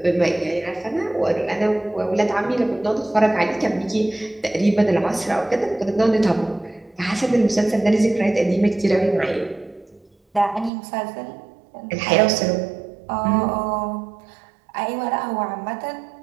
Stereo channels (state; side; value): drops out; left; at 10.7 s